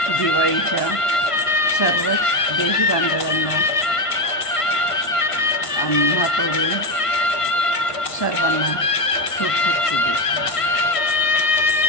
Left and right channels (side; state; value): right; late; 1.5 ms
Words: दिवाळीच्या सर्वच देश बांधवांना आम्हाकडून सर्वांना खूप खूप शुभेच्छा.